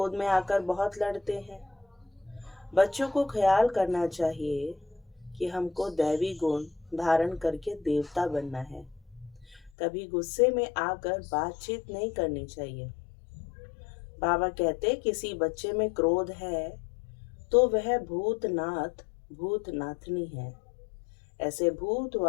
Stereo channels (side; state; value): right; drops out; at 9.7 s